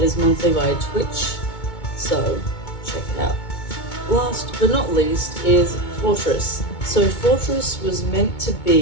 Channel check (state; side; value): late; right; 2.2 ms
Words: is monthly via Twitch, so check it out. Last but not least is Fortress. So Fortress was meant to